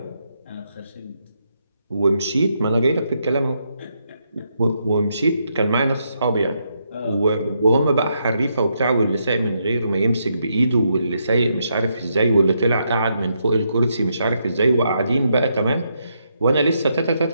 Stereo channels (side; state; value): both; inverted; correlation -0.79